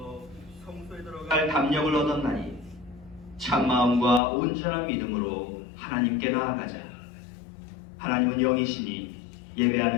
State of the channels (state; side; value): drops out; right; at 4.2 s